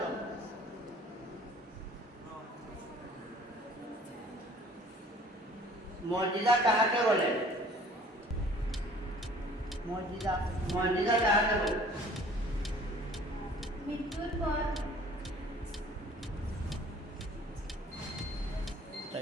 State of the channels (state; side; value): normal; both; correlation 0.52